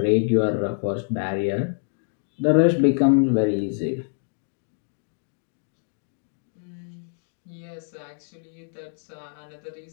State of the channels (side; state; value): right; silent; digital silence